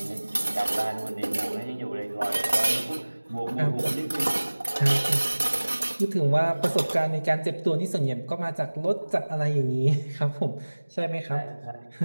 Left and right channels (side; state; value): both; inverted; correlation -1.00